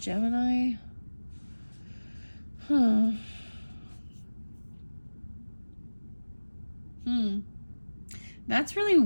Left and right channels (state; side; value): inverted; both; correlation -1.00